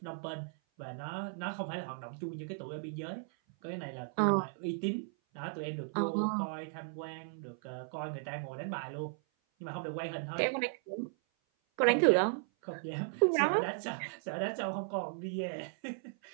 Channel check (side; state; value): left; silent; 54 dB below the other